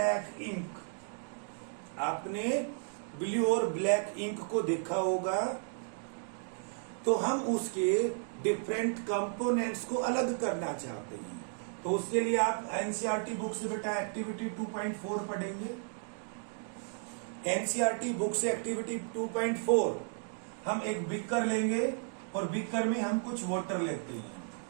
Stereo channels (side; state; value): left; silent; 55 dB below the other